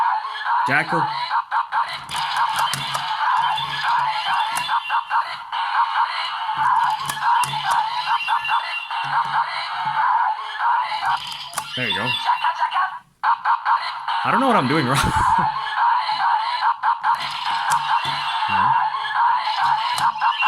Jackal. There you go. I don't know what I'm doing wrong. No.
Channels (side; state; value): both; identical; correlation 1.00